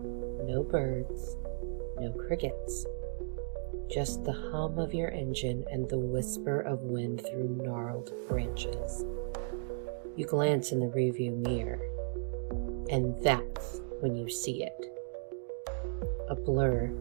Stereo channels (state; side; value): silent; left; digital silence